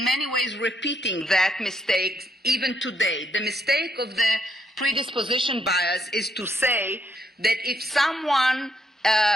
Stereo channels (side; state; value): both; normal; correlation 0.75